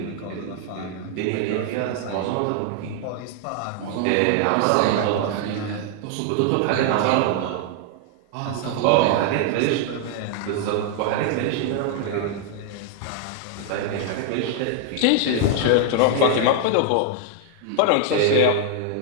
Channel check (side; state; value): both; different; correlation 0.00